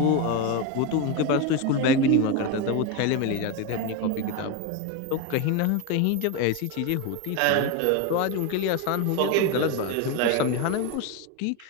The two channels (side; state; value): both; different; correlation 0.03